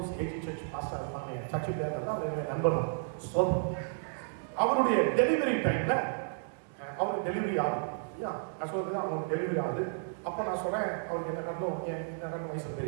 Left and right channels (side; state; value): left; silent; digital silence